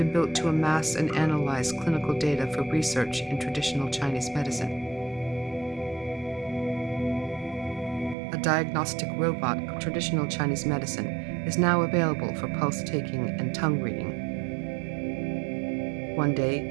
built to amass and analyze clinical data for research in traditional Chinese medicine. A diagnostic robot of traditional Chinese medicine is now available for pulse taking and tongue reading. One day,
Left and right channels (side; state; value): left; drops out; at 8.2 s